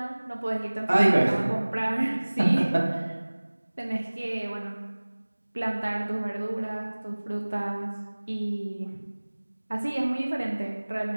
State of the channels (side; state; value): both; inverted; correlation -1.00